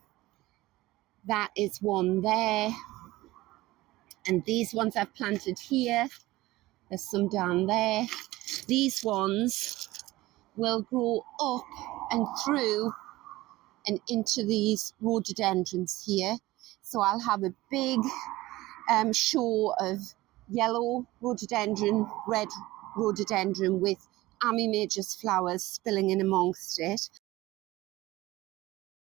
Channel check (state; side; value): quieter; left; 18.2 dB